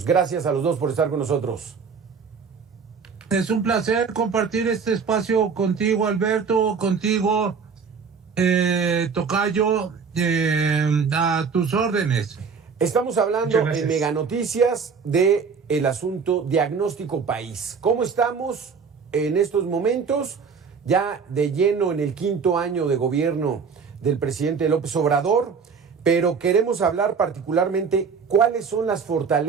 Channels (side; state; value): left; quieter; 5.7 dB